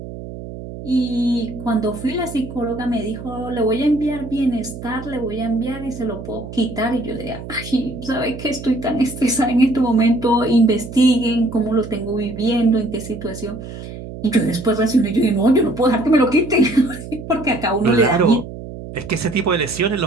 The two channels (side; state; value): right; noise; hum, 11 dB below the sound